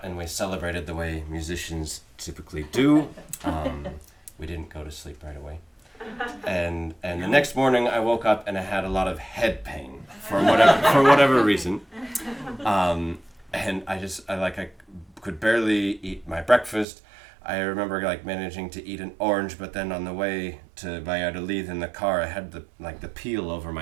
and we celebrated the way musicians typically do. We didn't go to sleep right away. And the next morning I woke up and I had a lot of head pain for whatever reason. And I could barely eat my breakfast. I remember managing to eat an orange, but then on the way to Valladolid in the car, I had the peel over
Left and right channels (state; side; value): drops out; left; at 16.9 s